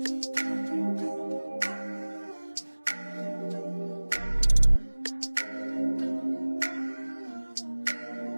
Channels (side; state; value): both; inverted; correlation -1.00